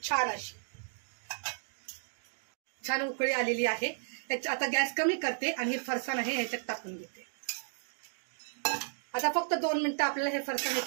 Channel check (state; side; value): silent; left; digital silence